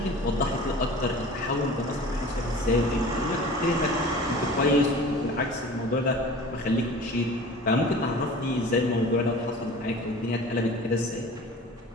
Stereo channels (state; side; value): normal; both; correlation 0.41